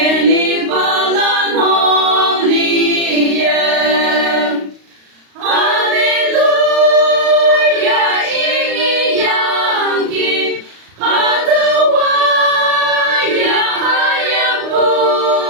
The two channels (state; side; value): late; left; 35 ms